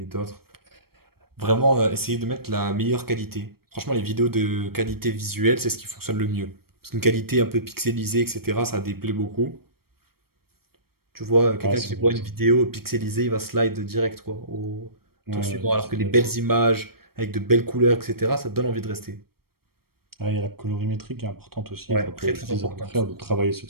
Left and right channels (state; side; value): late; left; 0.94 ms